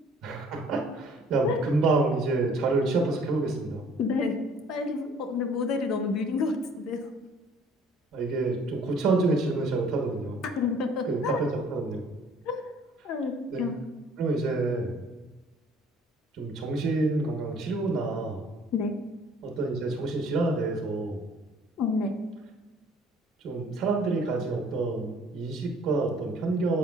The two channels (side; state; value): both; normal; correlation 0.56